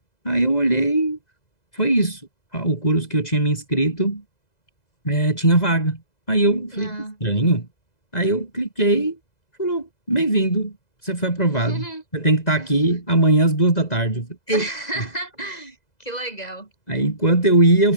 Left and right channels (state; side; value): late; right; 2.0 ms